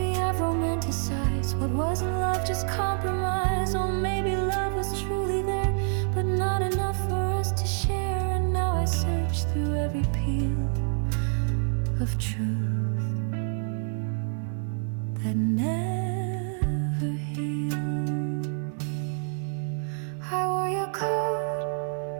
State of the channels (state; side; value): silent; left; 60 dB below the other